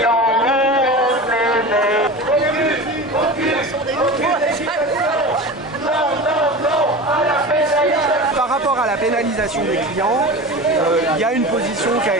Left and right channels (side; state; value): both; normal; correlation 0.31